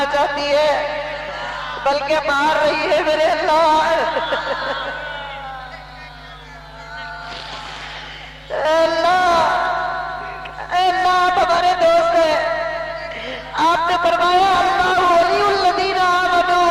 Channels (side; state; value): both; identical; correlation 1.00